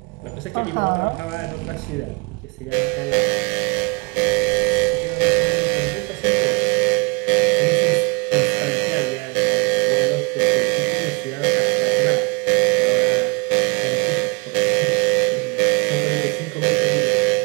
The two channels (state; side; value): quieter; left; 29.5 dB